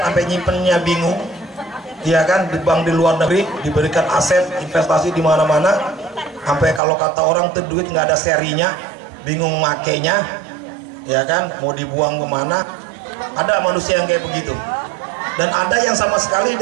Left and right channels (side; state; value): left; drops out; at 6.8 s